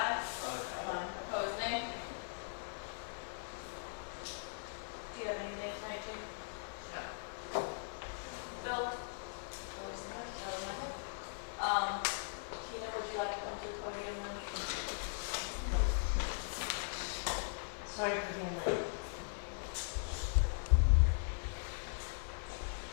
Opposed, nay? Do you have anything tonight, Jane? No. Bill? Tina, would you like to come to the podium now? Sorry for being late.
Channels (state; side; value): silent; right; digital silence